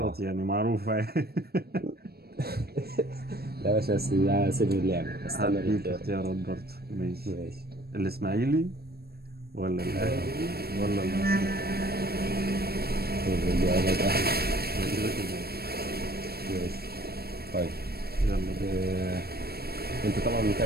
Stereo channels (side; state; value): left; late; 0.46 ms